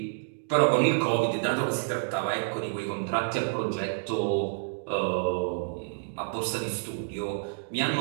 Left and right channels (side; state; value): left; silent; digital silence